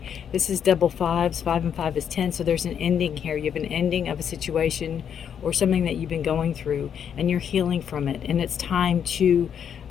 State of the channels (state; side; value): quieter; right; 8.2 dB